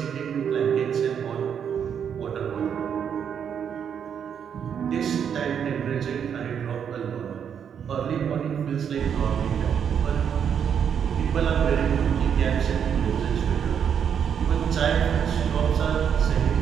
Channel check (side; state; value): left; quieter; 7.9 dB